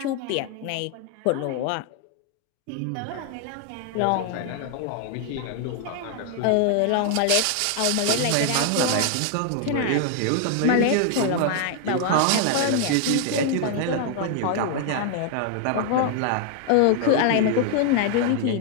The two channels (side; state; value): both; different; correlation 0.00